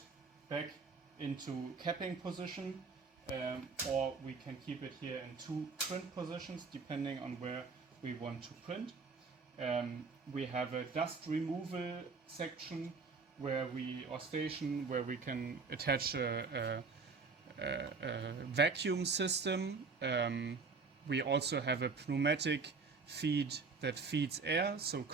back into capping position, or we can keep it here in two print positions depending on where we want to print. We have a dust removal section where station where we can attach a vacuum system. We also have a pneumatic feed that feeds air. So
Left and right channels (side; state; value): left; quieter; 4.5 dB